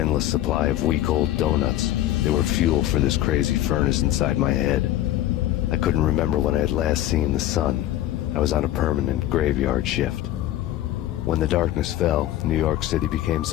supply of week-old donuts. They were fuel for this crazy furnace inside my head. I couldn't remember when I had last seen the sun. I was on a permanent graveyard shift. When the darkness fell, New York City became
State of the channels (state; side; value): quieter; right; 13.6 dB